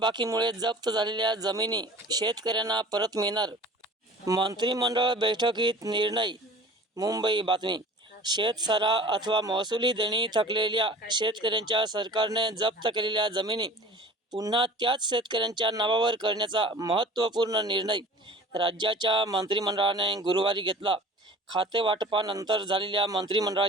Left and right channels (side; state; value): both; normal; correlation 0.43